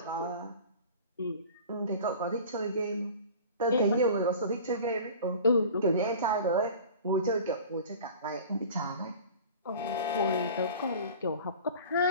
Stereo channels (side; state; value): both; inverted; correlation -0.40